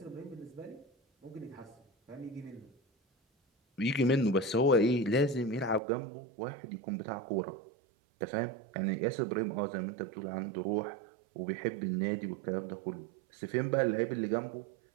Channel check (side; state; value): left; drops out; at 5.8 s